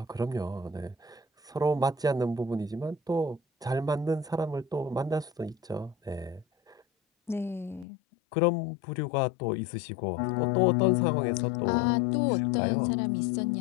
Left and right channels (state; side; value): drops out; right; at 7.9 s